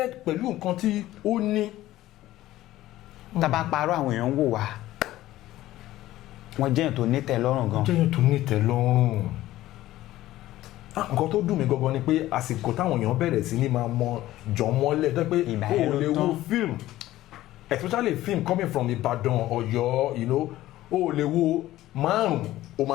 pẹ̀lú nǹkan tí ó ní. tá bá parọ́ àwọn èèyàn ń wò wá wọ́n jẹ́yàn tó ní tẹ́lọ́rùn gan. jẹ́yàn tó ní tẹ́lọ́rùn. nǹkan tó dùn mí gangan ni pé àsìkò táwọn èèyàn bẹ̀rẹ̀ sí ní máa mọ jọmọ́lẹ̀ tó pé o ò lè wo film especially film coming from Ìbàdàn Ọ̀yọ́ you know o ò lè wo márùn o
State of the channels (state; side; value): quieter; right; 15.3 dB